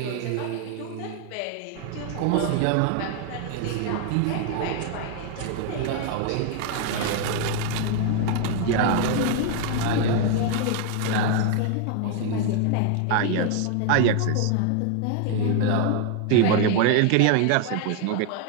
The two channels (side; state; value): both; different; correlation 0.00